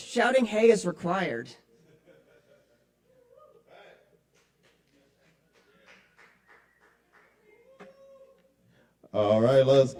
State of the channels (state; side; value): identical; both; correlation 1.00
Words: "hey" is required. All right, let's